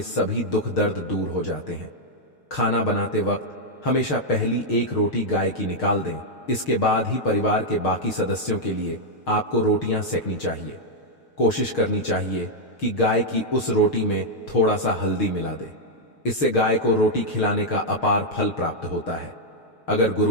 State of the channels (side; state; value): right; late; 6.5 ms